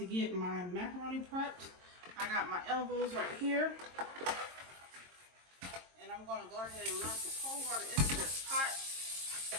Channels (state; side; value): late; left; 22 ms